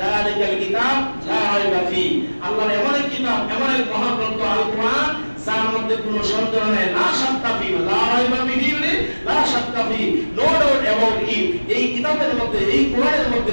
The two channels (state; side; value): inverted; both; correlation -1.00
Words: কিতাব লা রাইবা ফি। আল্লাহর এমন এক কিতাব, এমন এক মহাগ্রন্থ আল কোরআন, যার মধ্যে কোনো সন্দেহ নাই। লা শাক্কা ফি, লা রাইবা ফিহি, লা শাক্কা ফি, নো ডাউট অ্যাবাউট ইট। এই কিতাবের মধ্যে, এই কোরআনের মধ্যে